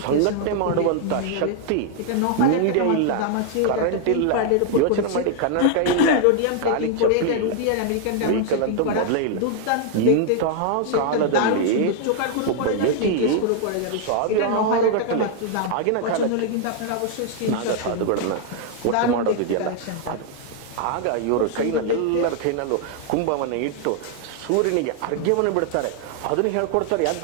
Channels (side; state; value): both; different; correlation 0.00